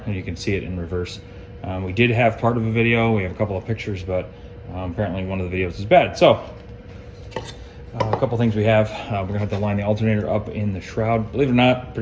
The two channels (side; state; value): both; identical; correlation 1.00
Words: and you can see it in reverse. We did have part of a video, we have a couple of pictures, but apparently one of the videos is bad. So A couple things we have. We're gonna have to line the alternator up in the shroud. Believe it or not,